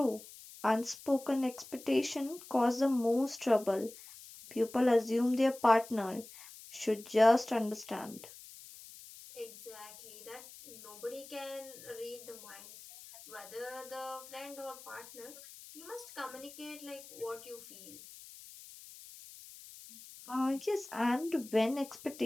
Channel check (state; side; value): noise; left; hiss, 17 dB below the sound